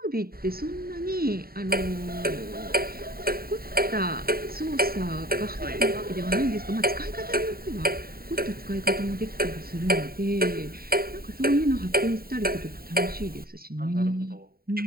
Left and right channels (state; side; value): late; left; 0.43 ms